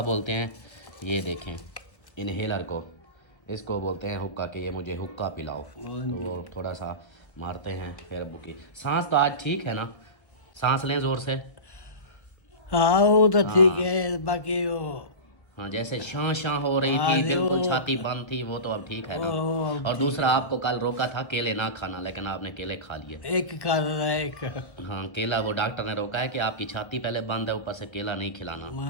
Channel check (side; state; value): right; late; 1.2 ms